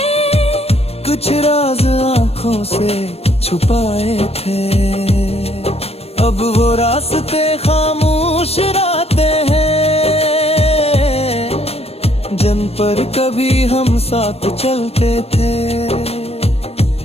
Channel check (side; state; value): right; late; 0.29 ms